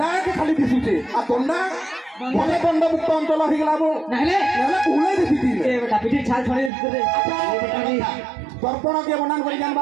के खाली दिसुचे आ तोंडा भले दंड मुक्त अंचल हो गला वो नहले नहले उले दिसिती ए बेटा पिठी छाल छोड़ी दे ये बेटा नहीं दर्पण के बनान करी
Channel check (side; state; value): left; drops out; at 6.7 s